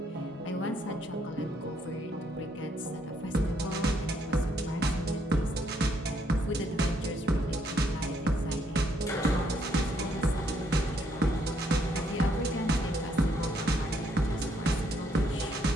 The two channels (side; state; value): both; normal; correlation 0.72